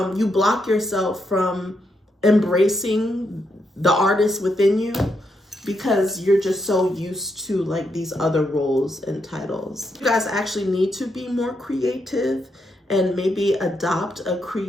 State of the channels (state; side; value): normal; both; correlation 0.80